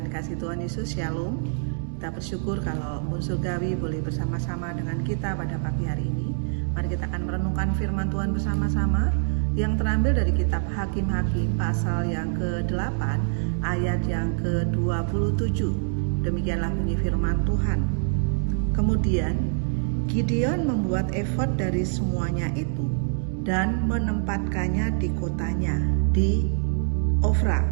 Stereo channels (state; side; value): silent; left; digital silence